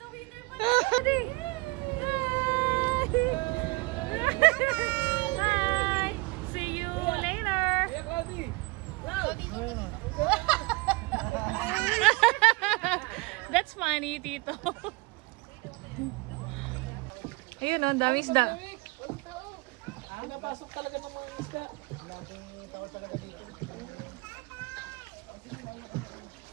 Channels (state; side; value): quieter; left; 25.6 dB